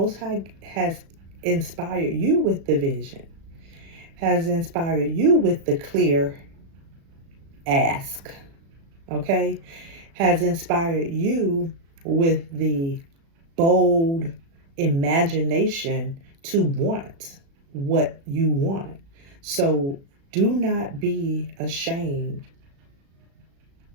High has inspired you with the vision, has inspired you with the clear ask, okay? Has inspired you with the bold imagination to want what you want. So do not be ashamed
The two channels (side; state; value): left; late; 36 ms